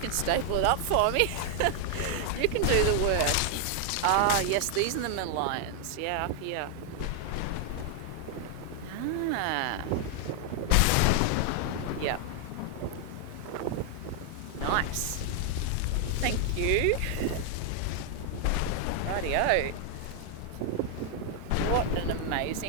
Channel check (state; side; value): different; both; correlation 0.00